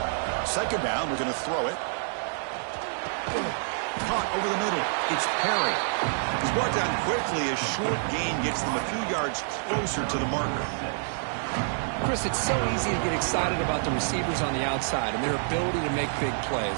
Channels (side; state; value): left; silent; digital silence